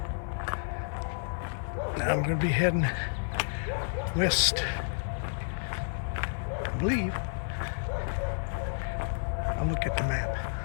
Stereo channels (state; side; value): silent; right; digital silence